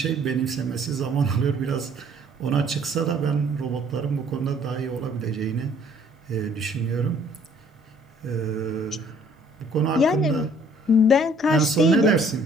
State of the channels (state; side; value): normal; both; correlation 0.59